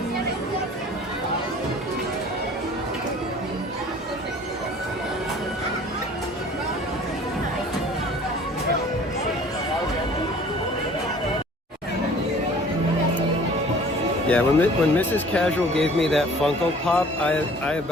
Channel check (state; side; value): normal; both; correlation 0.50